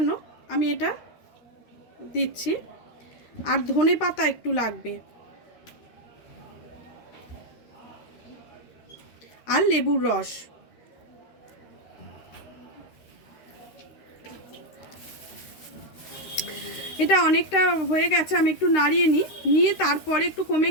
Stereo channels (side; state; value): right; late; 13 ms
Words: আমি এটা দিচ্ছি। আর ধনে পাতা একটু লাগবে, আর লেবুর রস। এটা অনেকটা হয়ে গেছে, আমি একটু নাড়িয়ে নিয়ে তারপরে একটু কমে